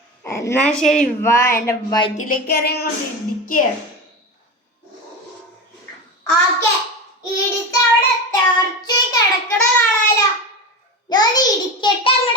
എന്നാ ശരി, വാ എന്റെ വയറ്റിലേക്ക് ഇറങ്ങി ഇടിക്കുക. ഓക്കെ, ഇടിച്ച് അവിടെ തെറിച്ച് കിടക്കണ കാണാലോ. ഞാൻ ഇടിക്കട്ടെ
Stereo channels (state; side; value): normal; both; correlation 0.23